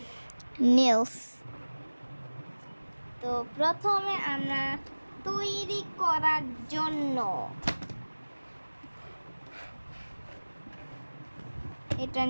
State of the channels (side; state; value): both; inverted; correlation -1.00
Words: নেলস। তো প্রথমে আমরা তৈরি করার জন্য এটা